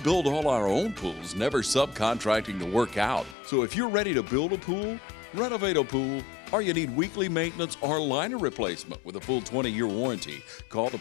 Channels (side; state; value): right; drops out; at 3.4 s